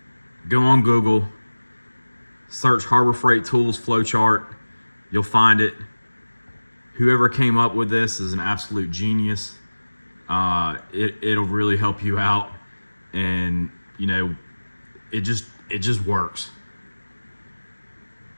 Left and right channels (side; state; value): both; inverted; correlation -1.00